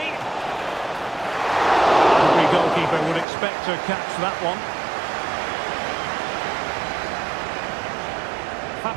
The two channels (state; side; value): drops out; left; at 3.2 s